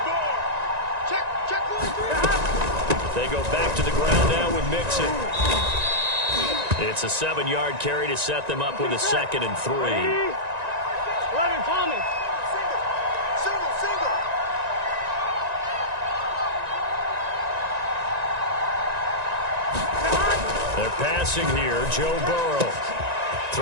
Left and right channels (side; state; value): left; late; 1.9 ms